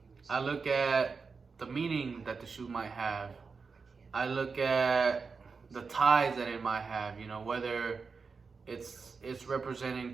look at the meaning that the shoe might have. I look at the ties that it might have, whether it's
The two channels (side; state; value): left; quieter; 5.0 dB